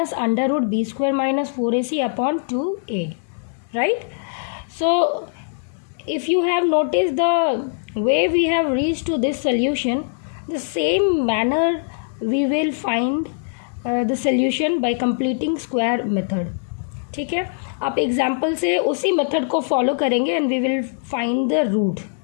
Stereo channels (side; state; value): right; silent; 60 dB below the other